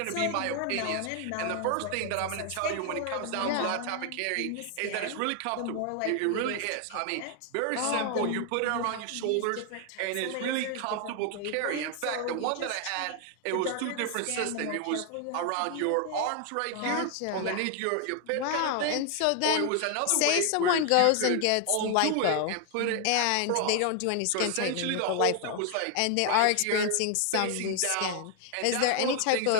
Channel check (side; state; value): both; different; correlation 0.00